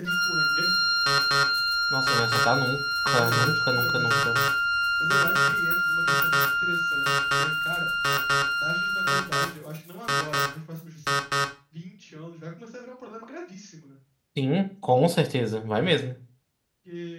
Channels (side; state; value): both; identical; correlation 1.00